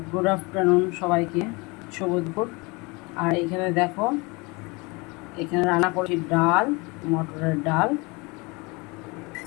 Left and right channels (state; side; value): quieter; right; 27.1 dB